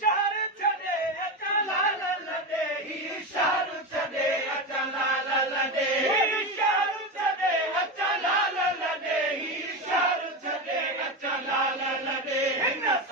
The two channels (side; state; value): both; normal; correlation 0.17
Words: शहर छॾे अचा लाल लॾे ही शहर छॾे अचा लाल लॾे शहर छॾे अचा लाल लॾे ही शहर छॾे अचा लाल लॾे हिन